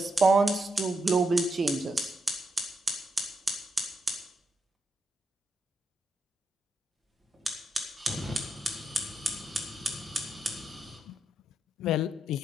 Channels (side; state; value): both; normal; correlation 0.82